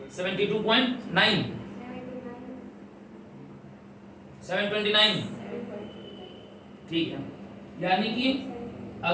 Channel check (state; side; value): identical; both; correlation 1.00